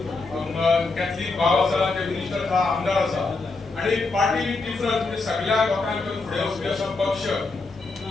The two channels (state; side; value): quieter; right; 3.7 dB